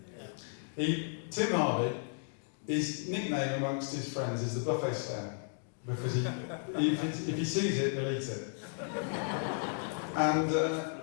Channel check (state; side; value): silent; right; digital silence